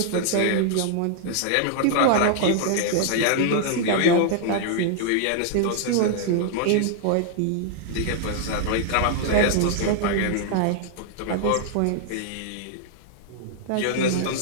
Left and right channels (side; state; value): both; different; correlation -0.01